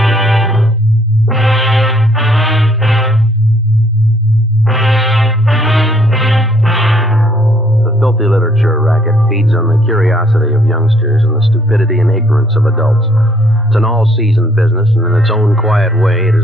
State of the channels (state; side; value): normal; both; correlation 0.65